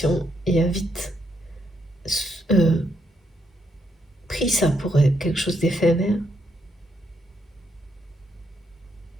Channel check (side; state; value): both; normal; correlation 0.77